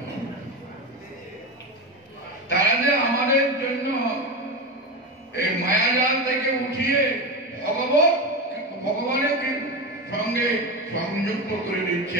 হবে। তারা যে আমাদের জন্য এই মায়াজাল থেকে উঠিয়ে ভগবানের সঙ্গে সংযুক্ত করে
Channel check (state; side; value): normal; both; correlation 0.20